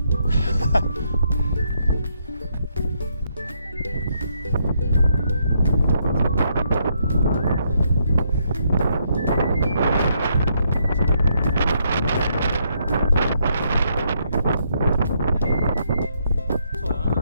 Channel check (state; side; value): inverted; both; correlation -0.74